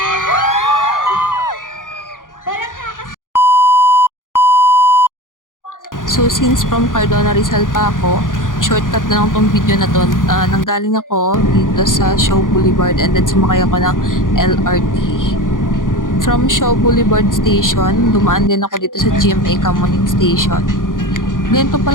Parang So since from Cardona Rizal pa ako, shortcut na lang tong video na to. Nanggaling ako dito sa Shaw Boulevard and then sumakay ako ng LRT. From Shaw Boulevard Station, dumaan din ako dito sa GMA Kamuning Station. Ganito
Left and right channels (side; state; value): right; late; 0.89 ms